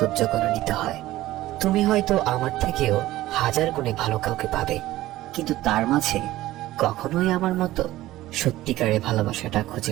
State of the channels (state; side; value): quieter; left; 16.0 dB